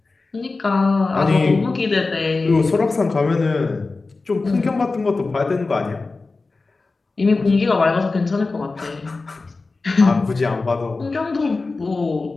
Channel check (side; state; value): right; quieter; 3.7 dB